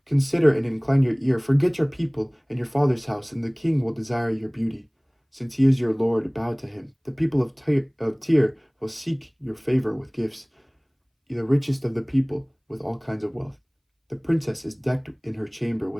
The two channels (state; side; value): identical; both; correlation 1.00